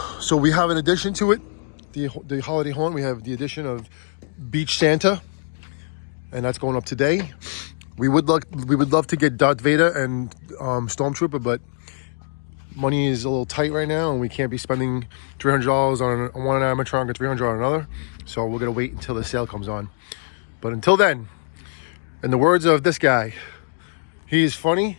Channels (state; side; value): silent; right; digital silence